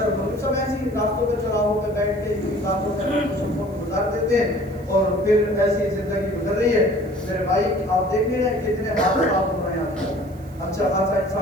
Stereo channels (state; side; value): noise; right; hiss, 28 dB below the sound